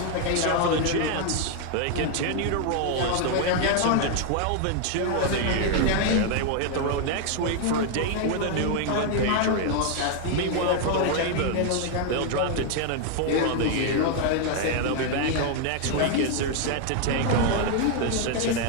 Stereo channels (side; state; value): both; different; correlation 0.00